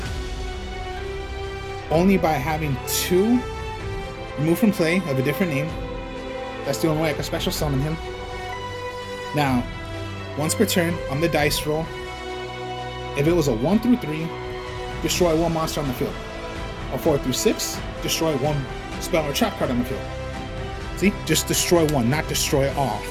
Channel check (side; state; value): both; identical; correlation 1.00